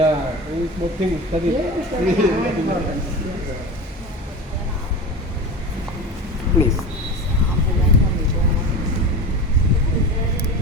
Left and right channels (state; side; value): normal; both; correlation 0.29